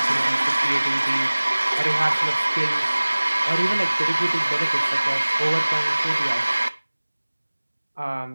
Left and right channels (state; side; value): inverted; both; correlation -1.00